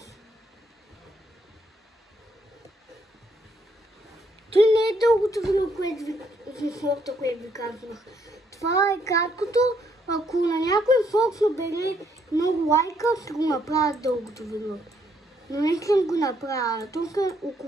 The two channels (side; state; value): both; normal; correlation 0.72